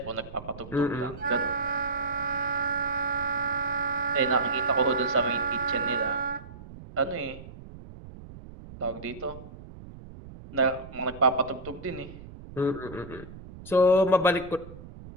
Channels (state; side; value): noise; right; rumble, 15 dB below the sound